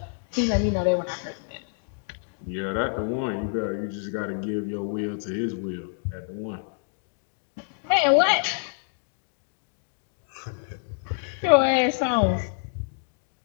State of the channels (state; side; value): silent; right; digital silence